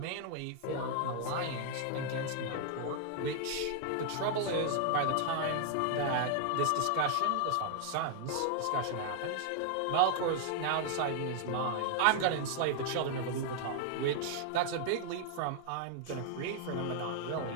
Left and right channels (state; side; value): different; both; correlation 0.00